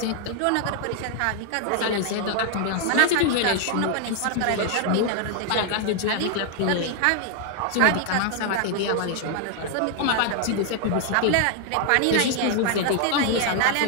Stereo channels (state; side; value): different; both; correlation 0.00